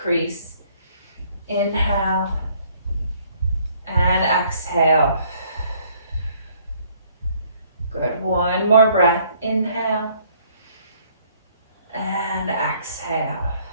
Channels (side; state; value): both; inverted; correlation -0.63